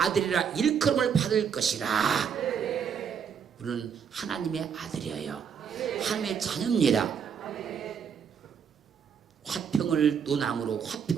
일컬음을 받을 것이라. 우리는 하나님의 아들이에요. 하나님의 자녀입니다. 화평을 논함으로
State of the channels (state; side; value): quieter; left; 7.2 dB